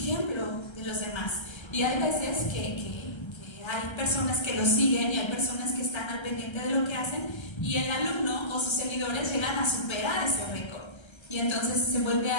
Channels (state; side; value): late; right; 1.3 ms